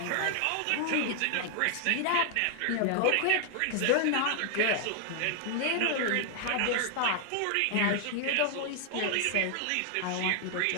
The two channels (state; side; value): different; both; correlation 0.00